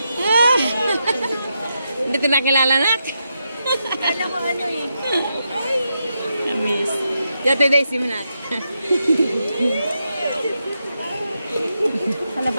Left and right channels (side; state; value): both; inverted; correlation -0.85